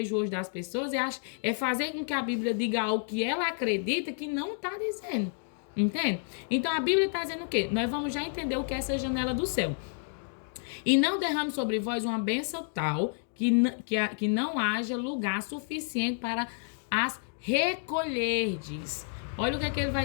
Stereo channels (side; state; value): right; silent; 57 dB below the other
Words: hoje das pessoas, é fazer com que a Bíblia diga algo que ela acredita que não tá dizendo, entende? Então a Bíblia tá dizendo o quê? Nós vamos já entender o que é essa janela do céu. E não derrame sobre vós uma bênção tal que não haja lugar suficiente para as recolherdes. Olha o que ele